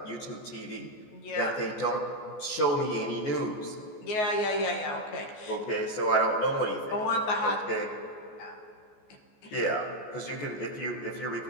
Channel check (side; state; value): right; late; 14 ms